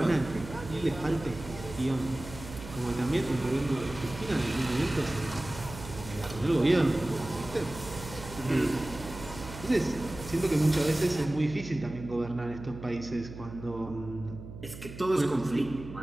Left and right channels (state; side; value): noise; right; hum, 13 dB below the sound